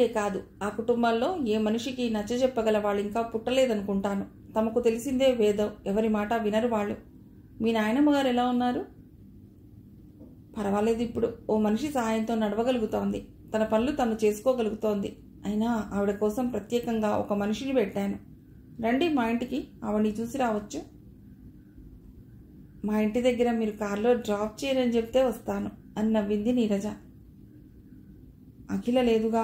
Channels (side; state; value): both; identical; correlation 1.00